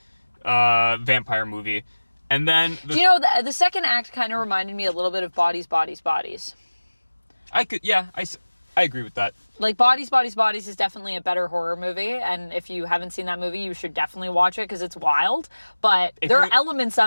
vampire movie. And then... the second act kind of reminded me a little bit of Bodies, Bodies, Bodies. I agree with that. Like, Bodies, Bodies, Bodies is definitely a better horror movie. And if you haven't seen that movie, you should definitely watch it because it's wild. But there are elements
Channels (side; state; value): both; inverted; correlation -1.00